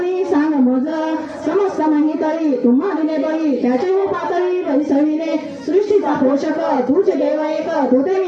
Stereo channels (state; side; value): identical; both; correlation 1.00